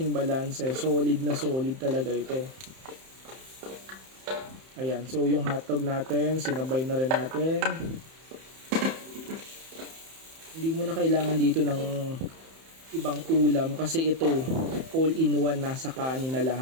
balance, solid na solid talaga ito. Ayan, so yung hotdog natin sinabay na rin natin. Hindi mo na kailangan dito ng ibang ulam kasi ito all in one, nasa kanin na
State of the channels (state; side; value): late; left; 31 ms